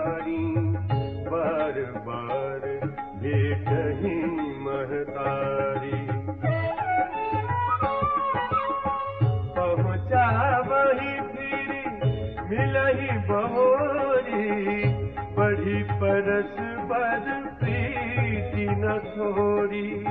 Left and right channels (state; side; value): identical; both; correlation 1.00